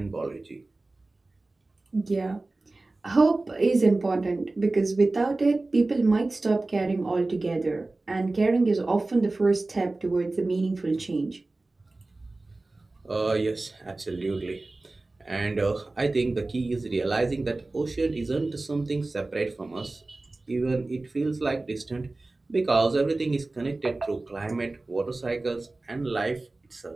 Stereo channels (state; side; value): quieter; left; 3.1 dB